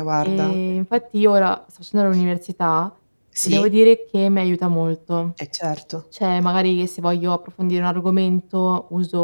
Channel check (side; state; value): both; inverted; correlation -1.00